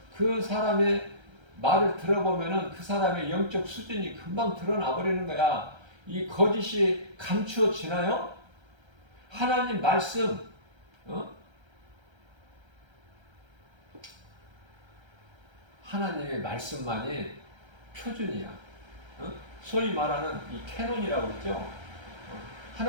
그 사람의 말을 들어보면은 그 사람의 영적 수준이 금방 드러나 버리는 거야. 이 거짓이 감추어지나요? 하나님 말씀, 하나님의 말씀만이 표준이야. 소위 말하는 이 캐논이라고 그러죠.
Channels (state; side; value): late; left; 1.3 ms